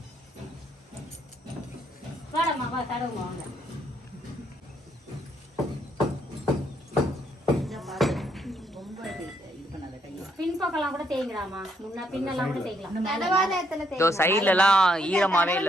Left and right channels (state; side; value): normal; both; correlation 0.73